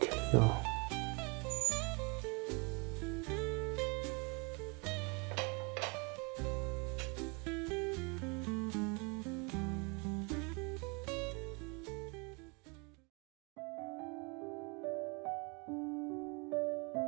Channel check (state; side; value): quieter; left; 31.3 dB